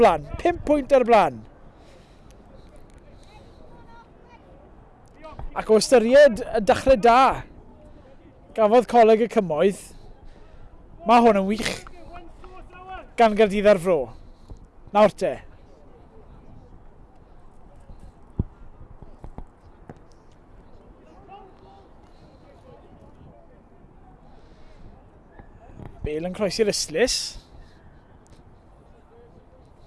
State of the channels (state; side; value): identical; both; correlation 1.00